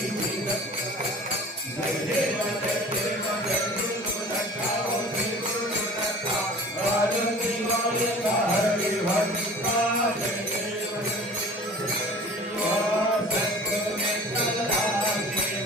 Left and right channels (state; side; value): normal; both; correlation 0.43